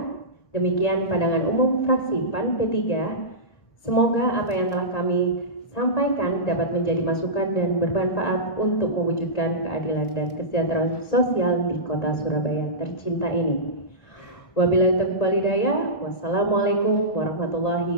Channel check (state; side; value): late; right; 1.8 ms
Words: demikian pandangan umum fraksi PAN P3. Semoga apa yang telah kami sampaikan dapat menjadi masukan dan bermanfaat untuk mewujudkan keadilan dan kesejahteraan sosial di Kota Surabaya tercinta ini. Wabillahi taufiq wal hidayah. Wassalamualaikum warahmatullahi